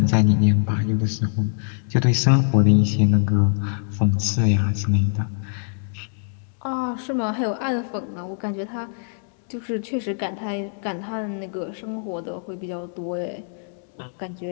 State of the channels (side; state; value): right; silent; 63 dB below the other